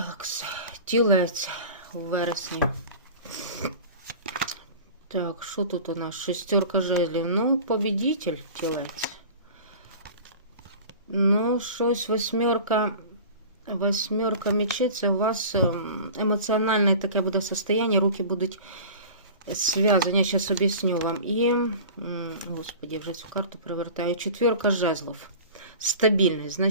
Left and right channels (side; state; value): both; inverted; correlation -0.38